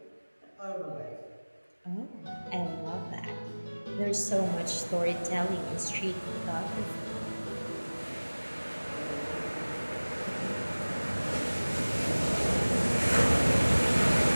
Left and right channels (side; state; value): both; inverted; correlation -1.00